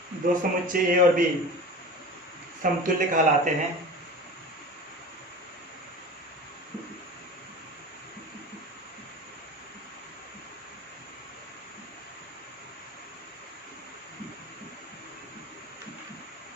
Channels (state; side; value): normal; both; correlation 0.35